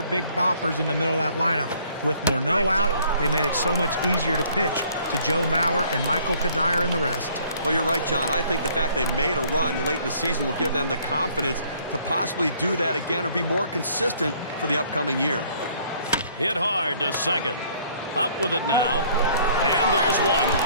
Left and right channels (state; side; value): inverted; both; correlation -0.60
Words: big boppers in the middle of that lineup. With Morneau out, they made it so much easier to pitch to Joe Mauer and Michael Kadire and the rest. Well, you're right, John. I think the fact they made a run late in the season will give them the confidence to possibly do that again or be more consistent for the upcoming year. Hit hard to second. Up with it now. And there's one.